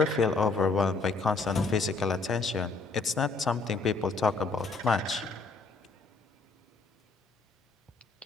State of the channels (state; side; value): quieter; right; 3.9 dB